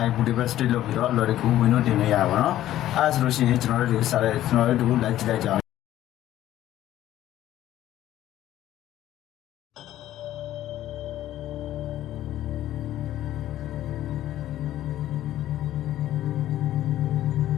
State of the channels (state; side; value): quieter; right; 13.3 dB